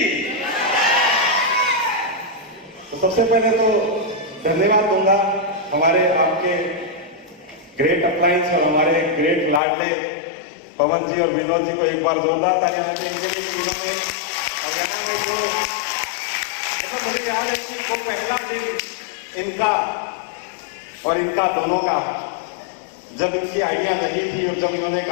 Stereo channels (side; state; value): right; drops out; at 9.6 s